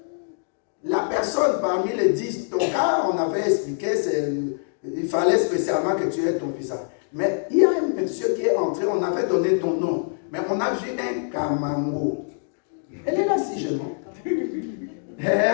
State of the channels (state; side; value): silent; right; digital silence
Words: la personne parmi les 10, ton cas, on avait expliqué, il fallait spécialement que tu aies ton visa. Mais il y a un monsieur qui est entré, on avait donné ton nom, mais on a vu un Kamango. Elle est là si je mens.